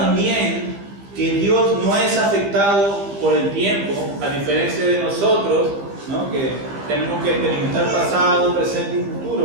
que Dios no es afectado por el tiempo, a diferencia de nosotros, ¿no? Que tenemos que experimentar pasado, presente y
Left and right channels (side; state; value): left; late; 15 ms